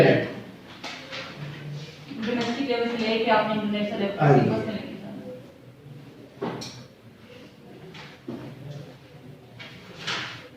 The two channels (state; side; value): identical; both; correlation 1.00